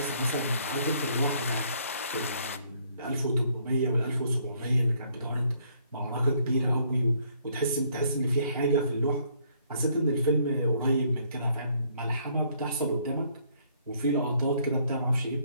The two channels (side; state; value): both; inverted; correlation -0.66